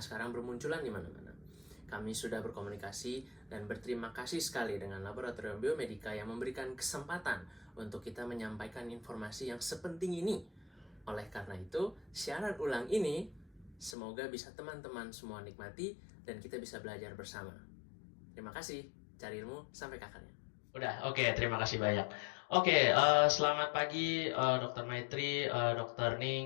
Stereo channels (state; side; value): drops out; right; at 14.0 s